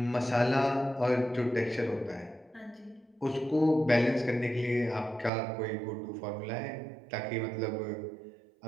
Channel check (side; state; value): left; drops out; at 5.3 s